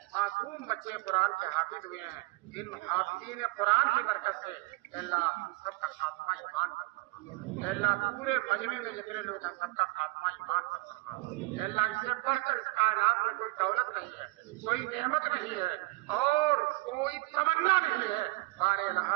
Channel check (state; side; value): quieter; left; 21.8 dB